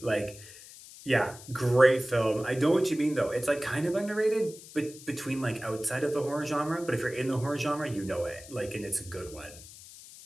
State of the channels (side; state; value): left; noise; hiss, 17 dB below the sound